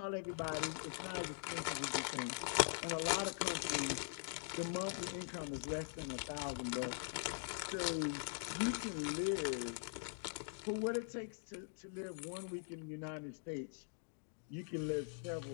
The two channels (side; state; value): right; silent; digital silence